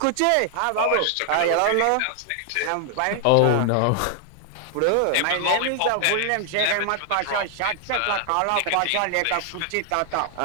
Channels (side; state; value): both; different; correlation 0.00